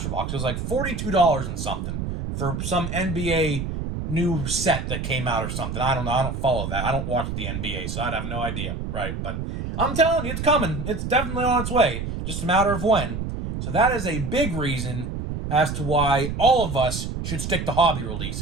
box. It was like $42 and something for some NBA new set that came out or something. I don't know. I don't follow that. I don't watch the NBA, so I'd have no idea, right? But I'm telling you, it's coming. It's definitely on its way. Just a matter of when. So that is a big reason as to why all of us should stick to hobby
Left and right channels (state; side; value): noise; right; rumble, 4 dB below the sound